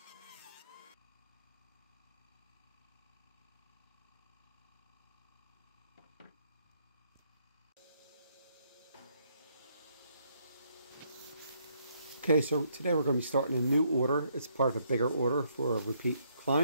Okay, so today we're going to be starting a new order. It's part of a bigger order for a repeat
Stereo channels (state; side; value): inverted; both; correlation -0.72